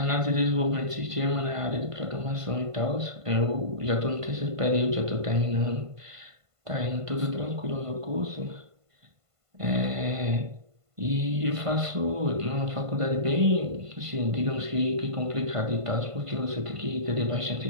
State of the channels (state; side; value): late; left; 1.5 ms